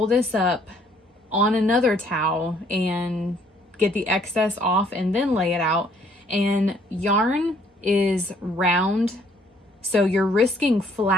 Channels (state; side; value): normal; both; correlation 0.64